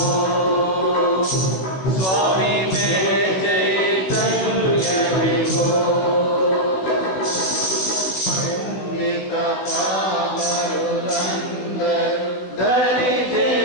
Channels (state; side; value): late; right; 16 ms